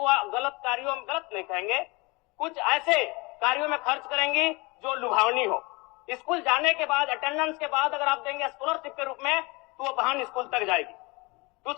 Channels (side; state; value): right; quieter; 26.1 dB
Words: गलत कार्यों में, गलत नहीं कहेंगे, कुछ ऐसे कार्यों में खर्च करेंगी जो लुभावनी हो। स्कूल जाने के बाद, अटेंडेंस के बाद अगर आप देंगे स्कॉलरशिप के रूप में तो वो बहन स्कूल तक जाएगी।